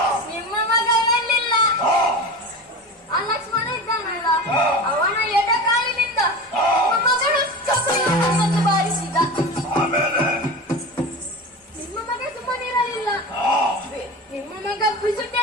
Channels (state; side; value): normal; both; correlation 0.29